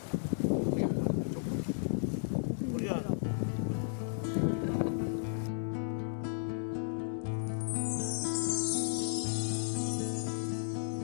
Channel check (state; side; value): silent; right; digital silence